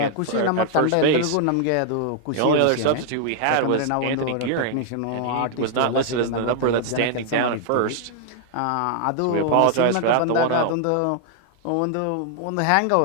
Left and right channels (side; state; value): both; different; correlation 0.00